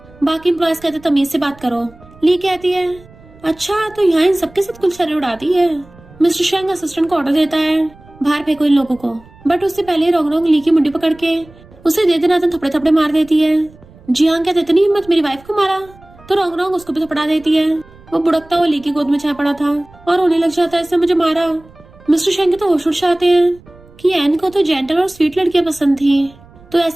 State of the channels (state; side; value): noise; right; rumble, 24 dB below the sound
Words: बाकी एम्प्लॉयज कहते तमीज से बात करो। ली कहती है अच्छा तो यहाँ इन सबके साथ कुलछड़े उड़ाती है। मिस्टर शेंग असिस्टेंट को ऑर्डर देता है बाहर फेंको इन लोगों को, बट उससे पहले रॉन्ग ली की मुंडी पकड़ के उसे दे देना थपड़े थपड़े मार देती है। जियांग कहते इतनी हिम्मत मेरी वाइफ को मारा, तो रॉन्ग उसको भी थपड़ा देती है। वो बुड़कता हुआ ली की गोद में जा पड़ा था और रोने लग जाता है इसने मुझे मारा। मिस्टर शेंग के तो होश उड़ जाते हैं कि एन को तो जेंटल और स्वीट लड़कियां पसंद थी, तो